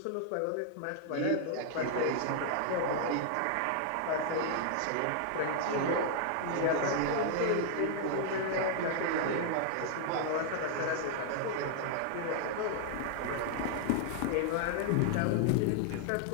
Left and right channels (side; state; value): both; different; correlation 0.00